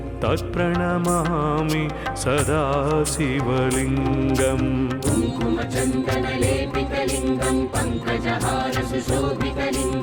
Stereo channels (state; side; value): identical; both; correlation 1.00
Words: तत्प्रणमामि सदा शिवलिङ्गम् कुङ्कुमचन्दनलेपितलिङ्गं